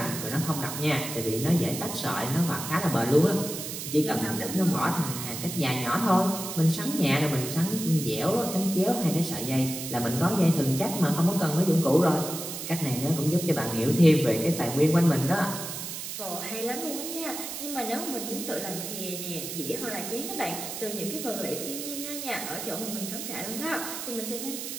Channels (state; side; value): noise; right; hiss, 7 dB below the sound